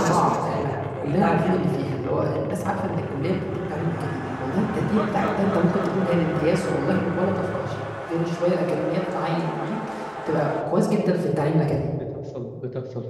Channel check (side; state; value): both; identical; correlation 1.00